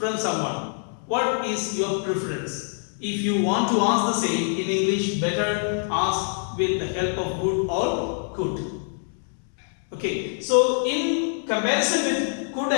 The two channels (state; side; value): silent; right; 62 dB below the other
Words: someone, what is your preference? If you want to ask the same in English, better ask with the help of would or could. Okay, so in comparison with could